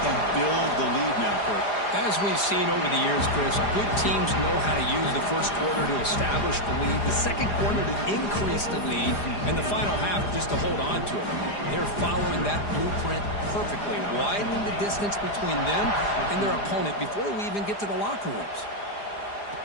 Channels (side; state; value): right; late; 4.9 ms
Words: and build the lead now, Kurt. As we've seen over the years, Chris, good teams know how to use the first quarter to establish the lead, the second quarter to increase the lead, and the final half just to hold on to it. They're following that blueprint perfectly, widening the distance between them and their opponent before we even get to the locker rooms.